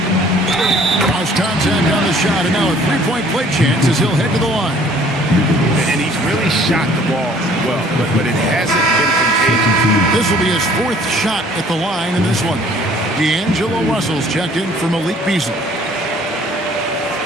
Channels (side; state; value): both; normal; correlation 0.56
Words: Lost contact on the shot, and now a three-point play chance as he'll head to the line. And he's really shot the ball well, but it hasn't been contagious. This will be his 4th shot at the line in this one. D'Angelo Russell's checked in for Malik Beasley.